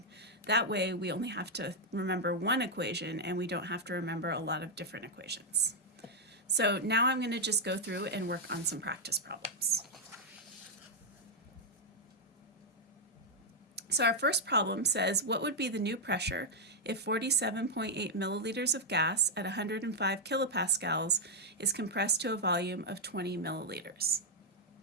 That way we only have to remember one equation and we don't have to remember a lot of different equations. So now I'm going to just go through and work on some practice problems. So our first problem says, what would be the new pressure if 47.8 milliliters of gas at 105 kilopascals is compressed to a volume of 20 milliliters?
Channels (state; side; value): normal; both; correlation -0.01